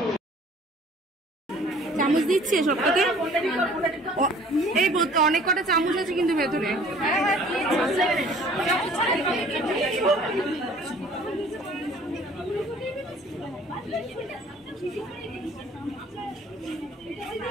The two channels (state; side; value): normal; both; correlation 0.52